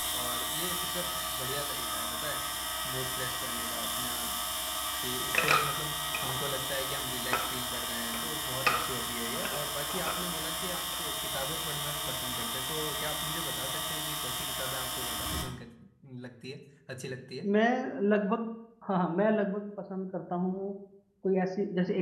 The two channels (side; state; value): both; identical; correlation 1.00